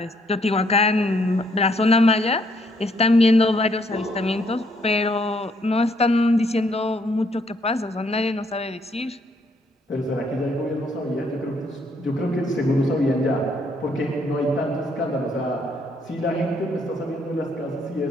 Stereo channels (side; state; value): both; normal; correlation 0.69